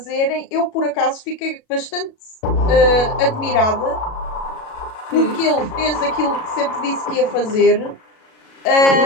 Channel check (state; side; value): late; right; 37 ms